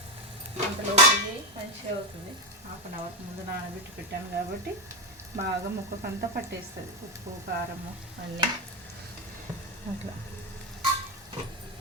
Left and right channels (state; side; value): normal; both; correlation 0.12